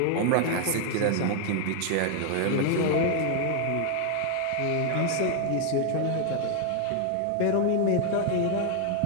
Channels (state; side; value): different; both; correlation 0.00